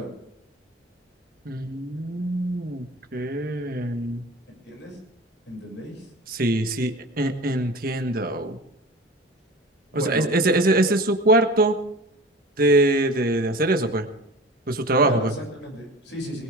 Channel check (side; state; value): both; normal; correlation 0.37